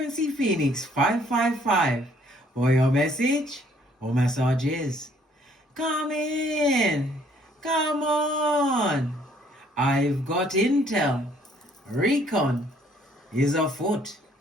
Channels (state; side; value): normal; both; correlation 0.63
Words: Phoenix 555. For your message or messages. Come in! Come on! I've got intel. Recon is afoot.